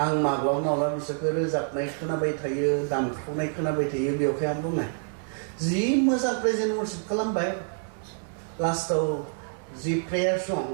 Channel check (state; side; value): silent; left; digital silence